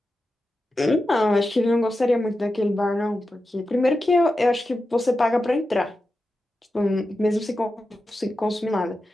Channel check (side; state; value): both; normal; correlation 0.91